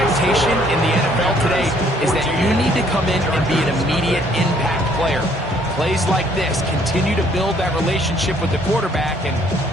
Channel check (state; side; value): normal; both; correlation 0.63